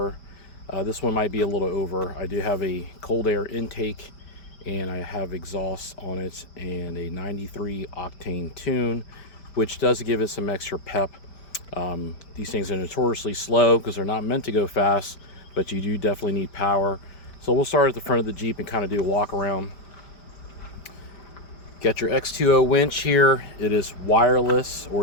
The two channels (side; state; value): right; late; 5.0 ms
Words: This one might be a little over. I do have a cold air intake and I have exhaust on it and a 93 octane tune, which does give it some extra pep. These things are notoriously slow because they're not meant to go fast, but you do definitely need power. So we'll start at the front of the Jeep and kind of do a walk around. Got your X2O winch here. It is wireless,